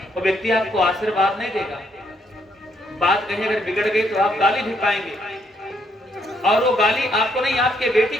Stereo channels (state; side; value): normal; both; correlation 0.73